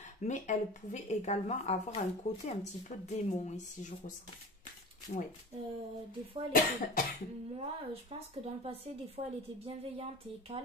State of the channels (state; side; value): normal; both; correlation 0.35